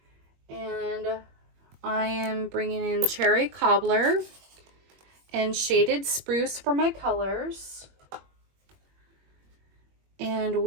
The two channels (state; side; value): late; left; 21 ms